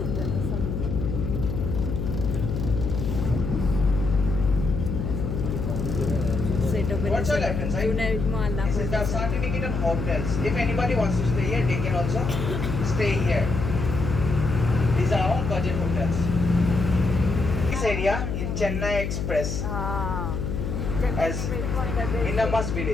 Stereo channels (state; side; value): noise; left; hum, 3 dB below the sound